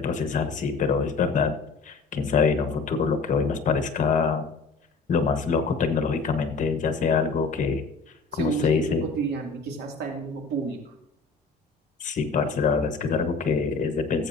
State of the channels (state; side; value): quieter; right; 4.4 dB